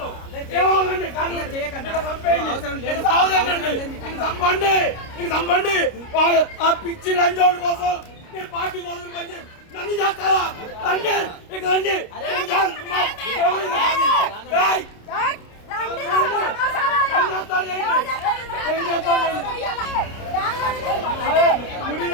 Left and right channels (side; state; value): right; late; 29 ms